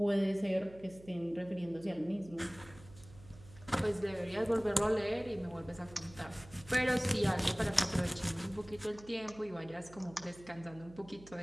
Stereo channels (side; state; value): right; noise; hum, 20 dB below the sound